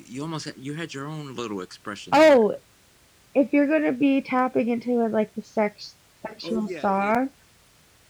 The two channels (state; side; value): identical; both; correlation 1.00